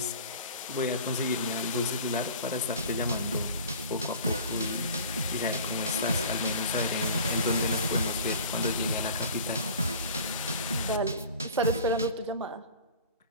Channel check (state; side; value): inverted; both; correlation -0.41